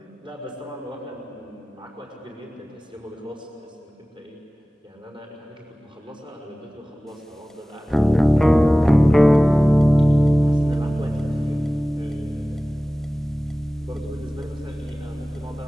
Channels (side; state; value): both; normal; correlation 0.98